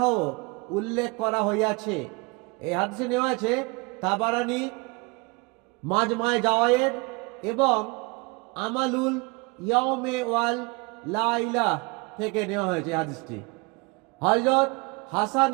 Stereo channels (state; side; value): quieter; left; 27.9 dB